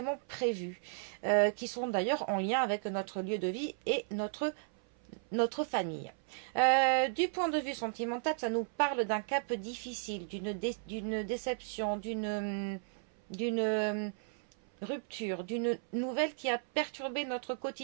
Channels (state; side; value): silent; left; 55 dB below the other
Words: prévues, qui sont d'ailleurs en lien avec notre lieu de vie et notre famille. Du point de vue sentimental, ça nous parle d'un cap difficile, d'une déception, d'une rupture, d'une nouvelle qui a perturbé notre